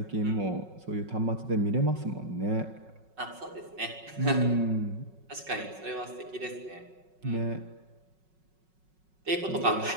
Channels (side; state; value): left; late; 5.4 ms